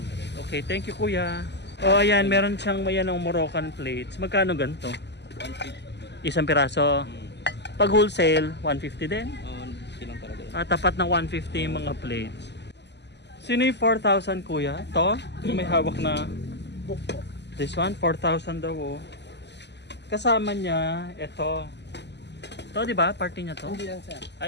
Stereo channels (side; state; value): right; late; 0.50 ms